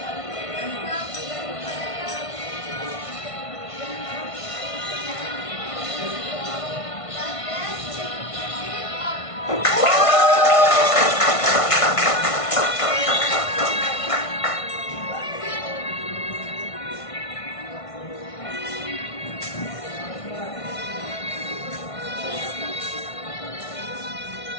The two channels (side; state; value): right; late; 1.5 ms